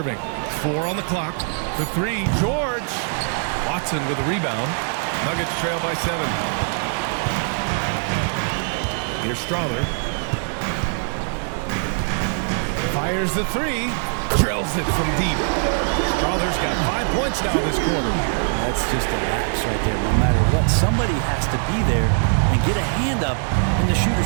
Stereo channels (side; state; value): left; silent; 59 dB below the other